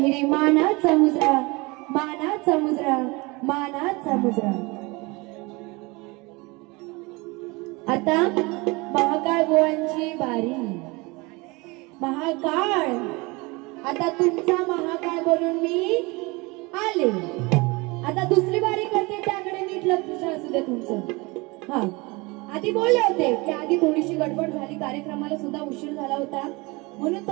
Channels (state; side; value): quieter; left; 25.4 dB